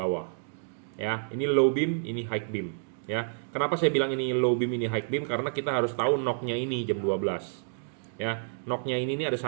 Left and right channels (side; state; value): left; silent; digital silence